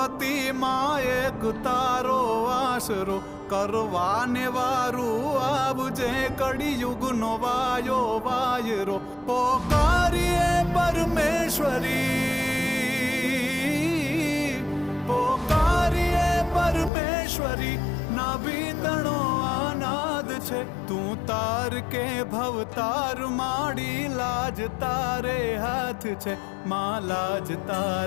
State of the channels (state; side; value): drops out; right; at 16.9 s